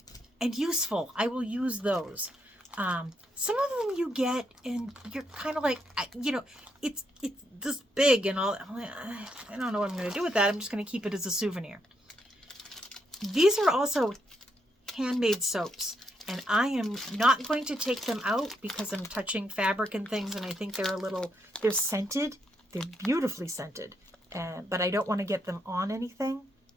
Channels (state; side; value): normal; both; correlation 0.78